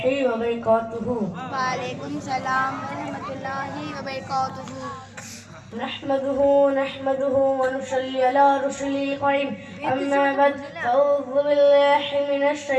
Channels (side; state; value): both; identical; correlation 1.00